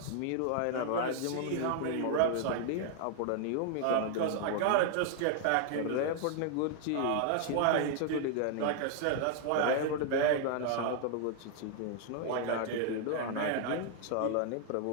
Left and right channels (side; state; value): both; different; correlation 0.00